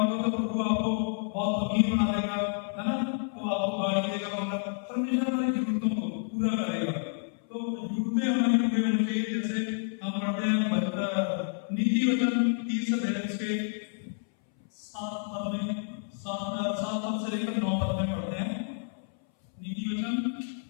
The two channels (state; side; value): silent; right; 58 dB below the other